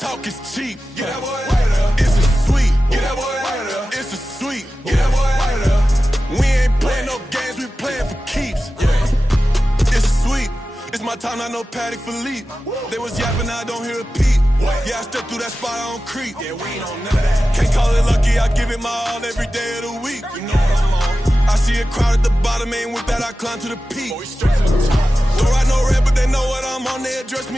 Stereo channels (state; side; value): normal; both; correlation 0.94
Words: is cheap. Get that boy out of there. It's a sweep. Get that boy out of there. It's a sweep. Get that boy out of there. We ain't playing no games, we playing for keeps. Yeah. It's a sweep. It's my time, not no Paddock Philippe. They was yapping, I don't hear a peep. Yeah, I step through that spot, I don't creep. Yeah, we ain't on none of that. Can't call it lucky, I give it my all every day of the week. You know what I'm on. I see a crowd at the bottom, ain't with that, I climb to the peak. Don't ride no red, but they know what I'm on, they address